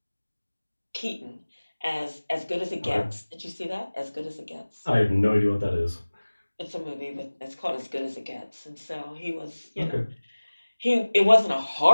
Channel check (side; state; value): both; inverted; correlation -1.00